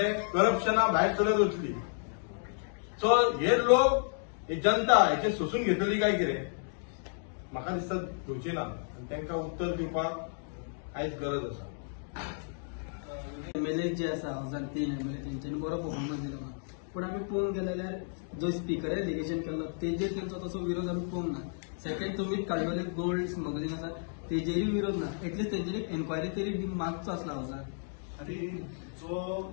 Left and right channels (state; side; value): silent; right; digital silence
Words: करप्शना भायर सरत वचली. सो हे लोक ही जनता हेचे सोसून घेतली काय कितें म्हाका दिसता घेवची ना आनी तांकां उत्तर दिवपाक आयज गरज आसा. एमएलए जे आसा 2003 एमएलए तेंच्यांनी बरो परफॉर्मन्स दिलो, पूण आमी पळोवंक गेले जाल्यार जो स्पिकरान एलिगेशन केल्लो तेजेर तेंचो तसो विरोध आमी पळोवंक ना. सेकंड तुमी काडलेले गोल्ड स्मगलिंग आसा तेजेरय विरोध ना. एटलिस्ट तेजेर एन्क्वायरी तरी मागचो आसला हावजान. आणि जो